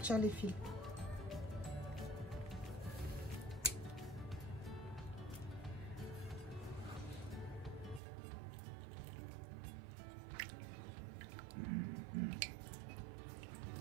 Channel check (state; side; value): drops out; left; at 8.0 s